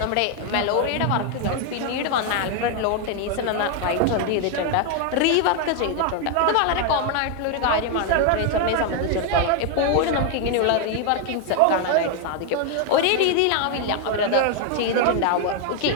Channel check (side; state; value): both; different; correlation 0.01